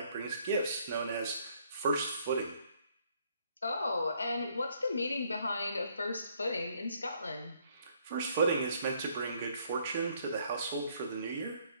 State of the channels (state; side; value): inverted; both; correlation -0.66